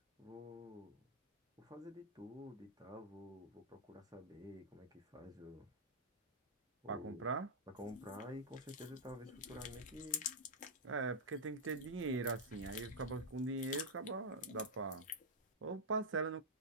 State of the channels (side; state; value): both; normal; correlation -0.05